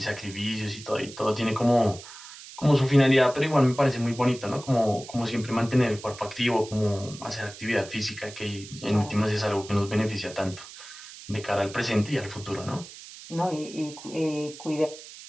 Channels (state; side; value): noise; right; hiss, 16 dB below the sound